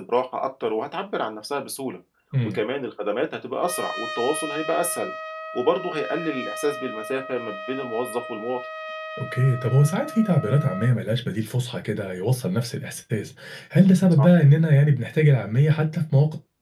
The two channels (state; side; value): identical; both; correlation 1.00